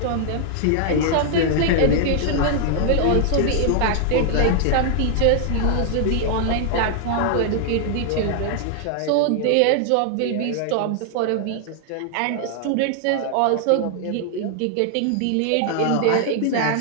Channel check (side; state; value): both; different; correlation 0.00